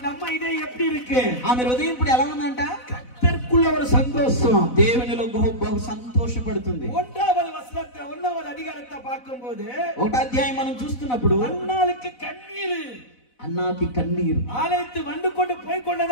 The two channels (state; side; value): late; right; 4.0 ms